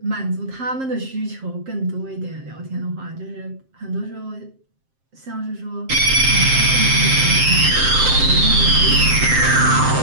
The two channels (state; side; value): late; left; 7.6 ms